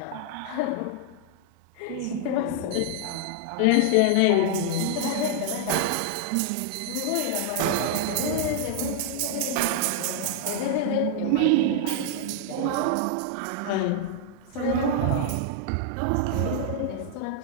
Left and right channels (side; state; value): both; different; correlation -0.01